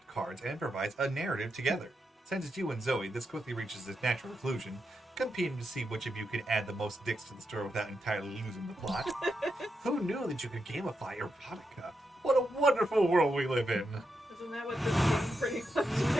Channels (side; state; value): both; normal; correlation 0.85